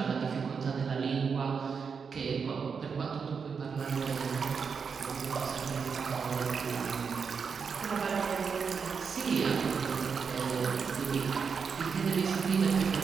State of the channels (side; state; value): left; quieter; 5.9 dB